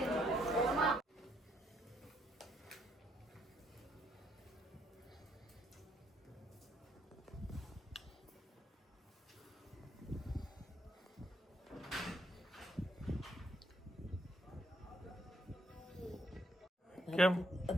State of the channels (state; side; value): normal; both; correlation 0.71